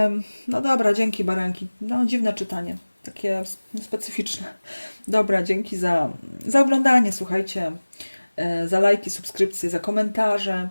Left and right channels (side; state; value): both; inverted; correlation -1.00